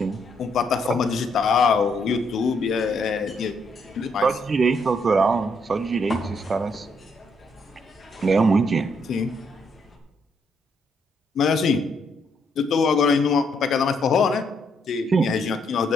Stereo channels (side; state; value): both; normal; correlation 0.74